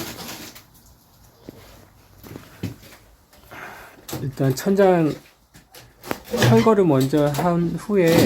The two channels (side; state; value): both; identical; correlation 1.00